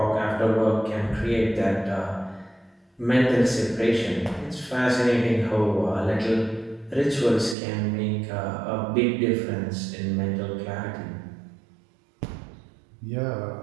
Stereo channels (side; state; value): left; drops out; at 7.6 s